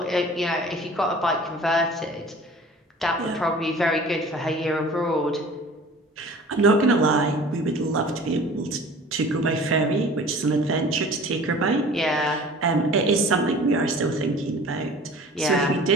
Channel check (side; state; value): both; normal; correlation 0.44